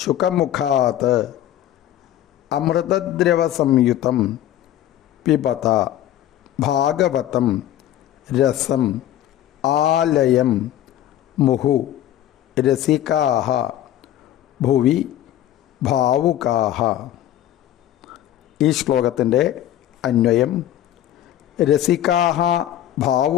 അമൃതദ്രവസംയുതം പിബത ഭാഗവതം രസം ആലയം മുഹു രസികാഃ ഭുവി ഭാവുകാഃ. ഈ ശ്ലോകത്തിൻ്റെ അന്വയം: രസികാഃ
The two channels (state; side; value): quieter; right; 12.3 dB